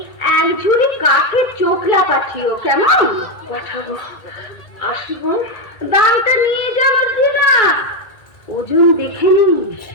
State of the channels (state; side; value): late; right; 1.9 ms